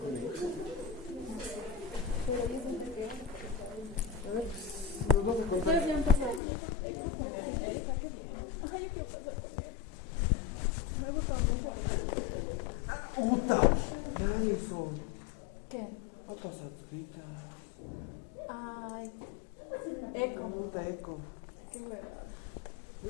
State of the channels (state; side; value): drops out; right; at 6.4 s